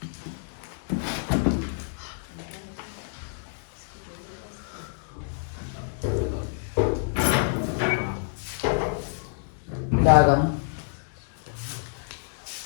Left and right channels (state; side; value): silent; right; digital silence